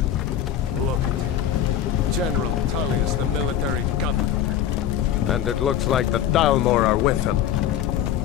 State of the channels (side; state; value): right; quieter; 10.3 dB